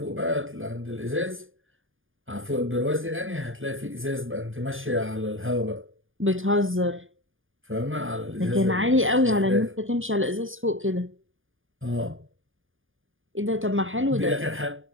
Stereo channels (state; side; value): late; left; 0.58 ms